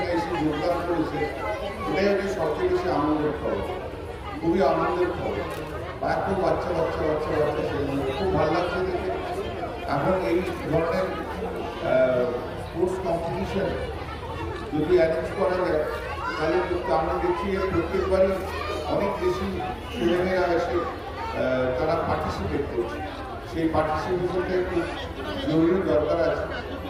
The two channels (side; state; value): both; identical; correlation 1.00